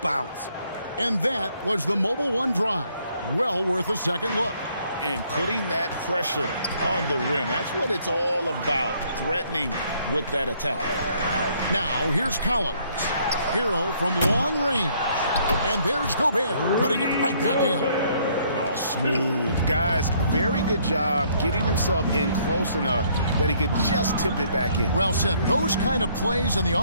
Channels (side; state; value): both; inverted; correlation -0.65